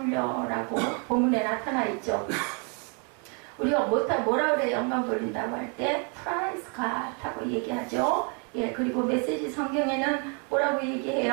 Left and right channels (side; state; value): left; quieter; 37.1 dB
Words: 본문에 나타나 있죠. 우리가 뭐라 그래 영광 돌린다고 할 때 praise God 하고 얘기하죠. 예, 그리고 메시지 성경에는 뭐라고